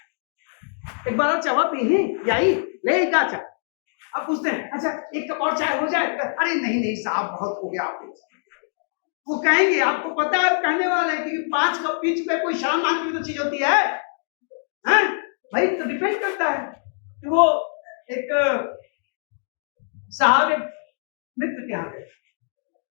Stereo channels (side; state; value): right; silent; digital silence